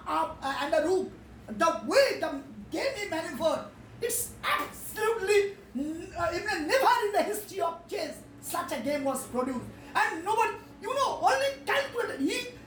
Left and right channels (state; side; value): identical; both; correlation 1.00